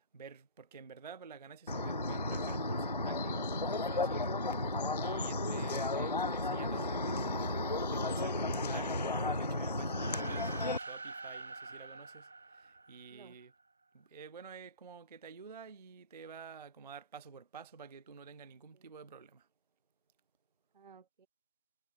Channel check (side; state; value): both; inverted; correlation -0.35